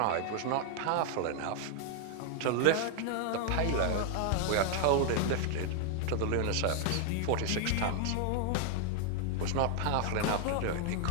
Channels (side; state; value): both; different; correlation 0.00